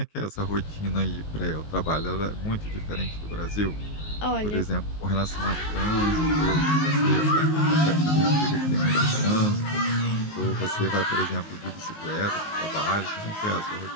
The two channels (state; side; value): late; right; 19 ms